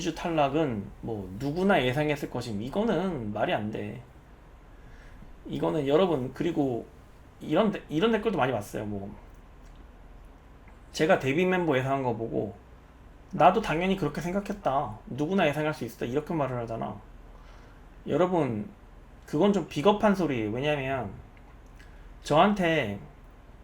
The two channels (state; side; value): identical; both; correlation 1.00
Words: 탈락은 뭐 누구나 예상했을 것임. 이거는 말이 안 돼. 이거는 여러분, 그리고 이런 댓글도 많이 봤어요. 뭐 제가 데뷔 멤버 예상한 거 보고 나도 당연히 그렇게 생각했다, 누구나 예상할 수 있었다, 이렇게 말을 하잖아. 여러분, 그건 좀 비겁한 소리예요. 왜냐면 저한테